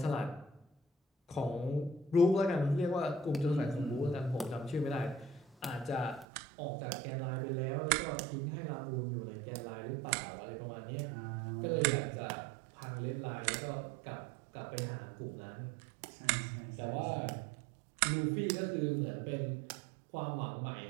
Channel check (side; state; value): left; drops out; at 6.2 s